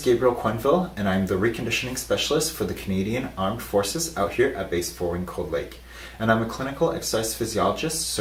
Quenville, and I'm the reconditioning specialist for the Canadian Armed Forces out here at Base 4 in Cold Lake. And I'm a clinical exercise physiologist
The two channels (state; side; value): identical; both; correlation 1.00